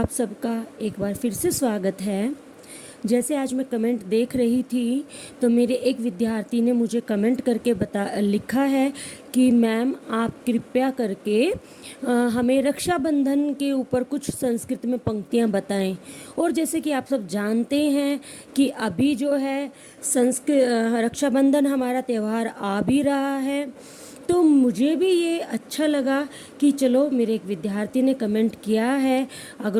सबका एक बार फिर से स्वागत है। जैसे आज मैं कमेंट देख रही थी तो मेरे एक विद्यार्थी ने मुझे कमेंट करके लिखा है कि मैम आप कृपया करके हमें रक्षाबंधन के ऊपर कुछ संस्कृत में पंक्तियां बताएं। और जैसे कि आप सब जानते हैं कि अभी जो है रक्षाबंधन हमारा त्यौहार आ भी रहा है, तो मुझे भी ये अच्छा लगा कि चलो मेरे एक विद्यार्थी ने कमेंट किया है,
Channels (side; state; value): both; identical; correlation 1.00